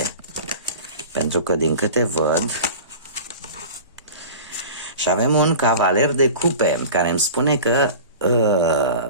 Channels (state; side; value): inverted; both; correlation -0.38